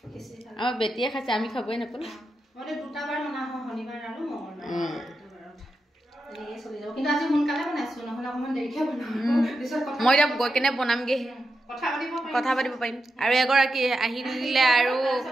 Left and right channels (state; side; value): normal; both; correlation 0.88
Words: আমাৰ বেটিয়ে খাইছে আমি খাবই নাপালো মই দুটা বাৰ বনা হয় শনিবাৰ আৰু মঙ্গলবাৰ এনেকৈ চলি যাব কিন্তু আজি সোনকালে বনাইছো নহ'লে অকণমান দেৰিকৈ বনাম মই এতিয়া গৈ কেনে বনামগে কথা পাতিব পাৰিম আৰু এগৰাকী আহিলে আৰু